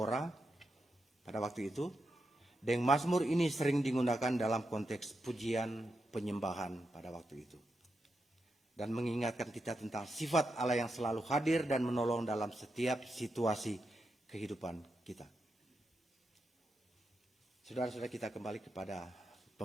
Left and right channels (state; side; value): normal; both; correlation 0.86